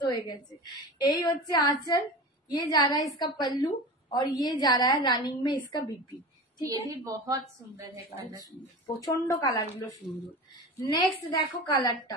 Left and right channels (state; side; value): normal; both; correlation 0.31